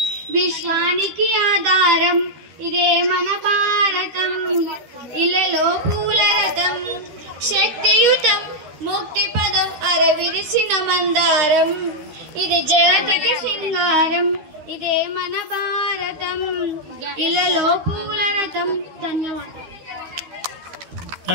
విశ్వానికి ఆధారం ఇదే మన భారతం. ఇలలో పూల రథం శక్తియుతం ముక్తిపదం అరవిరిసిన మందారం ఇది జగతికి సింగారం ఇదే మన భారతం. ఇలలో పూల రథం. ధన్యవాదాలు.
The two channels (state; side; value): late; left; 13 ms